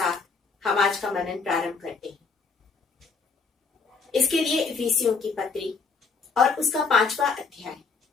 हम आज का मनन प्रारंभ करते हैं। इसके लिए इफिसियों की पत्री और उसका 5वां अध्याय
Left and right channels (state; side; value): quieter; right; 4.8 dB